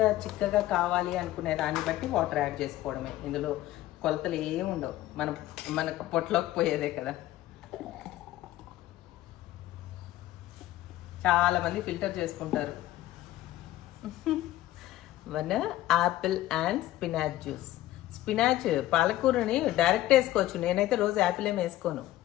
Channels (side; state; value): right; quieter; 15.1 dB